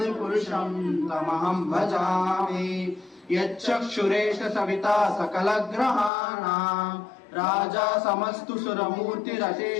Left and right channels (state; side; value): drops out; right; at 6.1 s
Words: तमहं भजामि यच्चक्षुरेश सविता सकलग्रहाणां राजा समस्तु